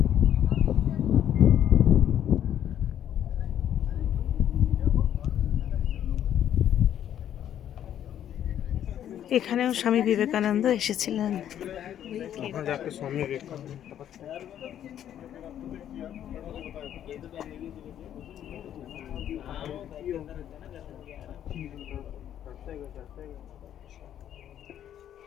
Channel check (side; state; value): right; quieter; 10.5 dB